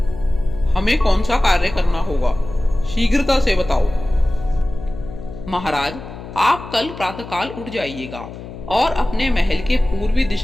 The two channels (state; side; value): noise; left; hum, 13 dB below the sound